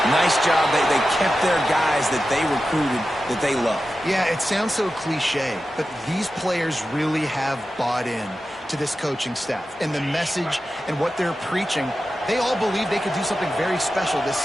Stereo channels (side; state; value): both; normal; correlation 0.92